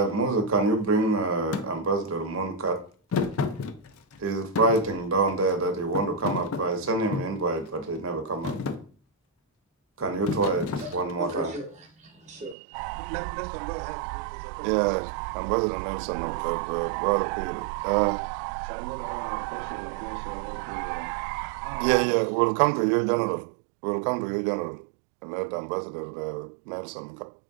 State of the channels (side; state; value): left; drops out; at 12.6 s